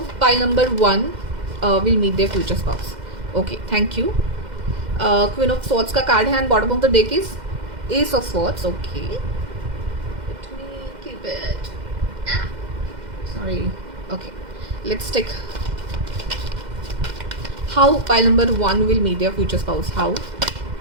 pile number 1 will meet their future spouse. Okay, thank you. Queen of swords का कार्ड है and bottom of the deck is ace of swords. Okay, let me keep it. Sorry. Okay, let's take how pile number 1 will meet their future spouse. How?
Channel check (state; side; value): late; left; 2.1 ms